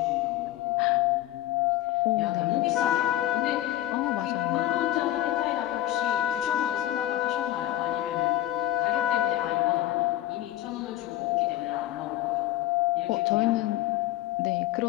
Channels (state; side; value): quieter; right; 14.0 dB